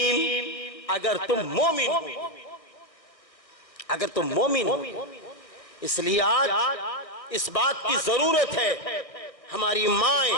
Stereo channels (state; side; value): late; right; 1.6 ms